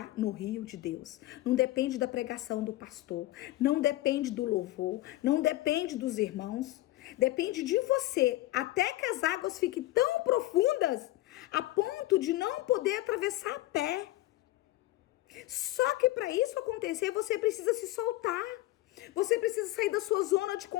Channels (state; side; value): quieter; right; 16.7 dB